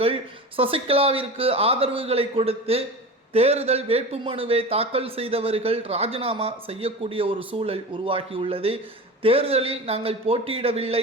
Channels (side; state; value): both; normal; correlation 0.31